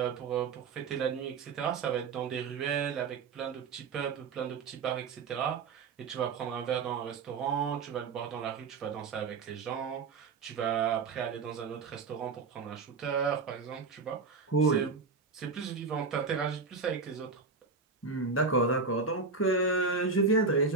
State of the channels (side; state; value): left; quieter; 4.7 dB